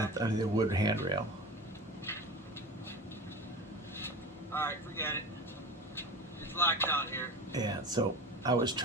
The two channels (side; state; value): both; normal; correlation 0.31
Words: the wood handrail. Alright, forget it. It's locked down here. Yeah, so I was